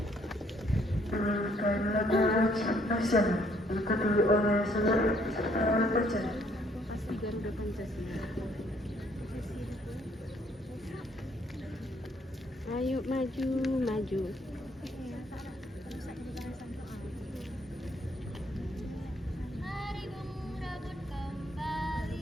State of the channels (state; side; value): normal; both; correlation 0.66